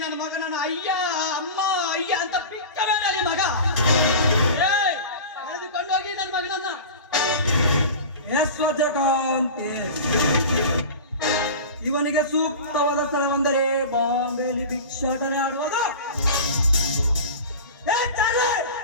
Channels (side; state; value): both; inverted; correlation -0.32